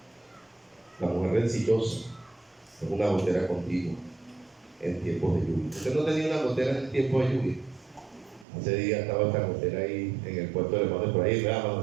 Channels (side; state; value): left; drops out; at 8.5 s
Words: La mujer rencillosa es una gotera continua en tiempos de lluvia. ¿Usted no tenía una gotera en tiempo de lluvia? Hace días estaba esta gotera ahí en el puerto de hermano Efraín, ¿verdad,